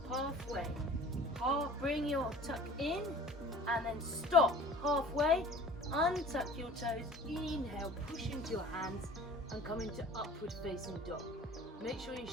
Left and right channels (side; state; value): both; normal; correlation 0.46